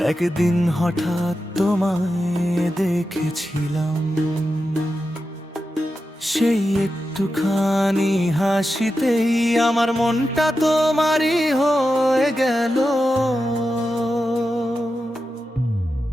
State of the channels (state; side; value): normal; both; correlation 0.90